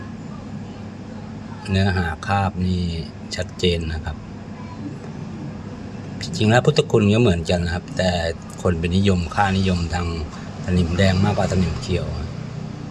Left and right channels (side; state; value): both; identical; correlation 1.00